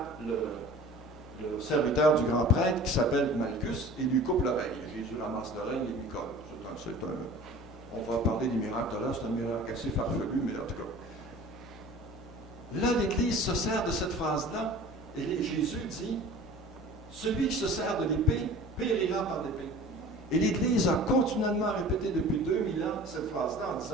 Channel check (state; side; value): normal; both; correlation 0.43